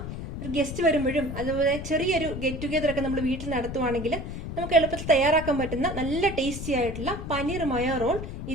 ഒരു ഗസ്റ്റ് വരുമ്പോഴും അതുപോലെ ചെറിയൊരു ഗെറ്റ് ടുഗെദർ ഒക്കെ നമ്മൾ വീട്ടിൽ നടത്തുവാണെങ്കിൽ നമുക്ക് എളുപ്പത്തിൽ തയ്യാറാക്കാൻ പറ്റുന്ന നല്ല ടേസ്റ്റി ആയിട്ടുള്ള പനീർ മയോ റോൾ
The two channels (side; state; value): left; noise; rumble, 7 dB below the sound